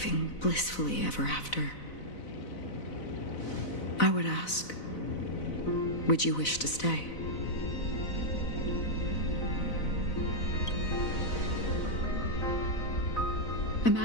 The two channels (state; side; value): late; right; 4.0 ms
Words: blissfully ever after, I would ask, would you wish to stay?